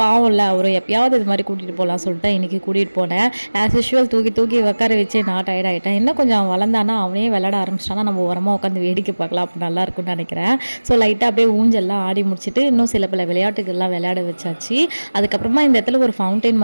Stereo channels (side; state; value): both; inverted; correlation -1.00